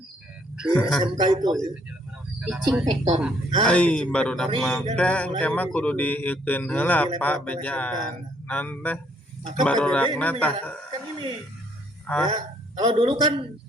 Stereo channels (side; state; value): both; normal; correlation 0.67